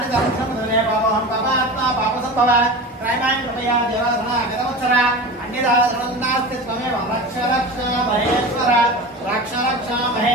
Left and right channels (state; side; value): normal; both; correlation 0.31